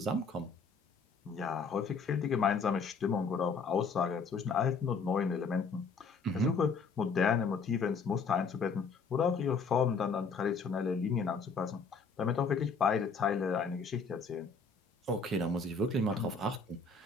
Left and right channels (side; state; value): right; quieter; 4.7 dB